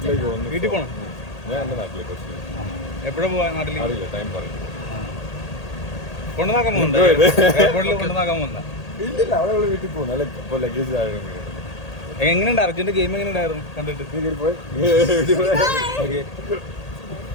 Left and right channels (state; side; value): late; right; 1.8 ms